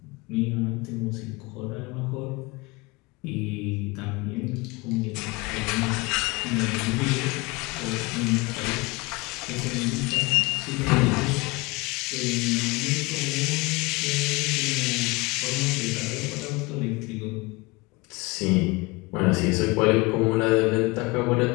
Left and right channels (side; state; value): right; quieter; 24.6 dB